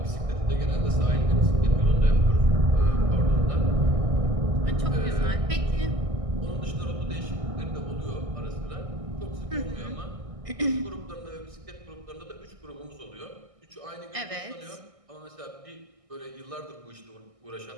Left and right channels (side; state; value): left; late; 1.6 ms